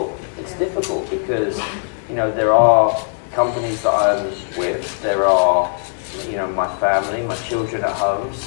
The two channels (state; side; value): silent; right; 66 dB below the other